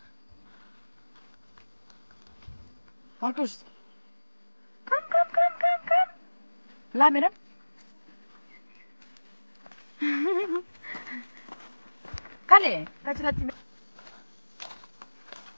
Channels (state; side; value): inverted; both; correlation -1.00